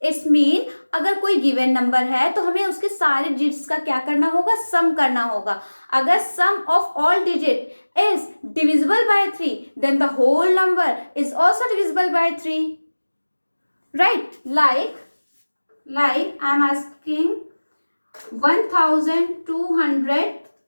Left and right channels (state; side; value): inverted; both; correlation -1.00